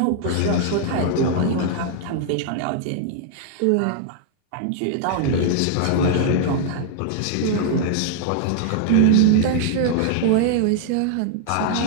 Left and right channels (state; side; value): different; both; correlation -0.01